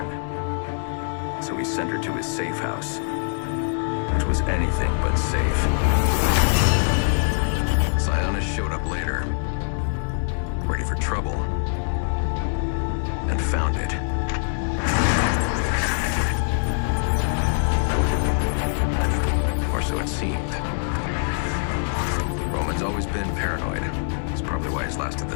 So he sent her to his safe house. Which was anything but safe. Sionis showed up later. Ready for trouble. and found it. Or so it seemed. Roman's always been paranoid. That's probably why he's lasted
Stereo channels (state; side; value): silent; right; digital silence